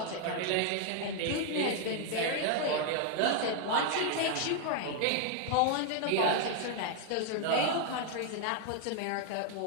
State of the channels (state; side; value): different; both; correlation 0.01